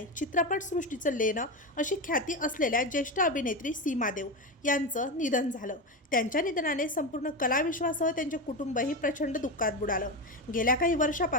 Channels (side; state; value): both; normal; correlation 0.17